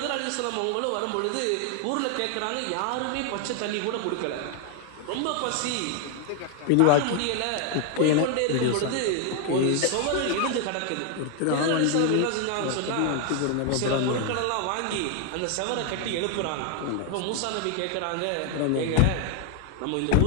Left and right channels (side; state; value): both; different; correlation 0.00